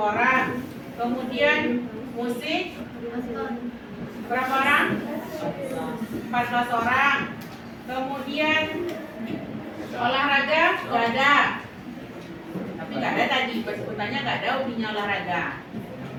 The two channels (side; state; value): both; identical; correlation 1.00